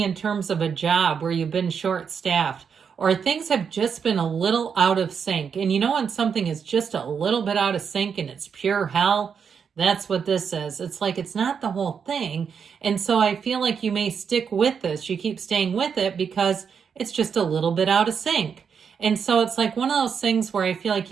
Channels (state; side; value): quieter; left; 6.7 dB